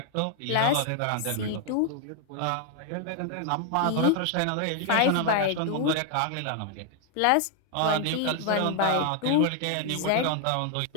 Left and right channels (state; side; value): different; both; correlation 0.00